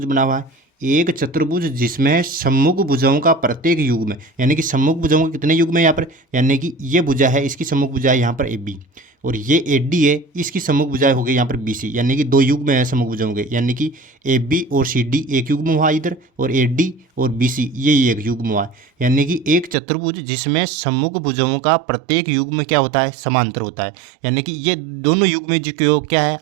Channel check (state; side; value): drops out; left; at 19.8 s